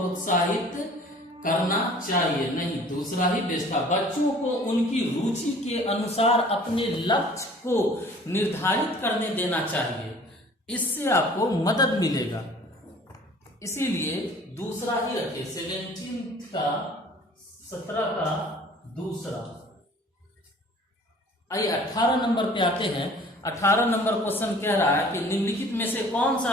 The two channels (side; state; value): both; normal; correlation 0.50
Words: करना चाहिए, नहीं, दूसरा ही बेस्ट था। बच्चों को उनकी रुचि के अनुसार अपने लक्ष्य को निर्धारित करने देना चाहिए, इससे आपको मदद मिलेगा, इसीलिए दूसरा ही रखे। 17 का दूसरा। आइए 18 नंबर पे आते हैं। 18 नंबर क्वेश्चन कह रहा है कि निम्नलिखित में से कौन